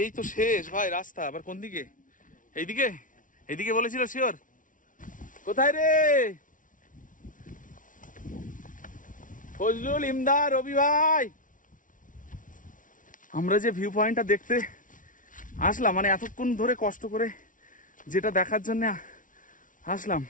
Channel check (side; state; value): right; late; 0.38 ms